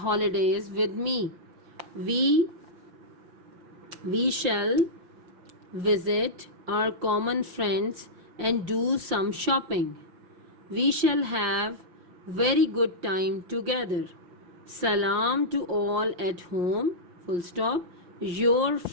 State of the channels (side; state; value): left; late; 5.7 ms